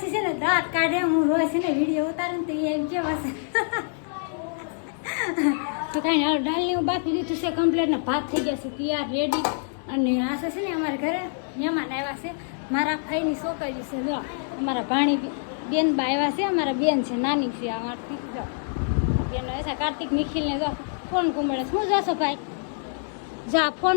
છે ને દાંત કાઢે, હું રોજ છે ને વિડીયો ઉતારે ને તો એમ કેવા છે તો કાંઈ હાલ દાળની હું બાકી દીધું છે કમ્પ્લેટ ને ભાત થઈ ગયા છે તૈયાર રેડી. અને આ છે ને અમારા ઘરે મહેમાન આવ્યા છે, મારા ભાઈની છોકરી છે. જો અમારા ભાણી બેન બા આવ્યા છે, અમારા બેન છે નાની છે અમારથી. જો બેન છે કાર્તિક નિખિલને. જો ફોન કુંબળે શું જોશો ભાઈ? જા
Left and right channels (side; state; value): right; silent; digital silence